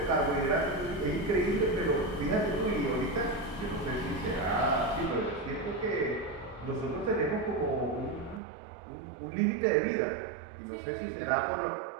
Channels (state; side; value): drops out; left; at 8.4 s